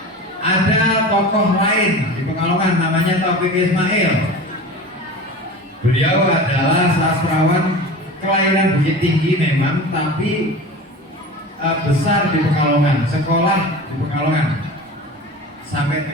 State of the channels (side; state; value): both; normal; correlation 0.34